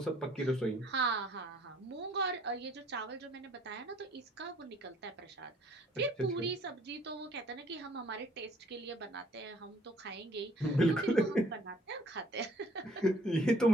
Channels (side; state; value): both; normal; correlation 0.59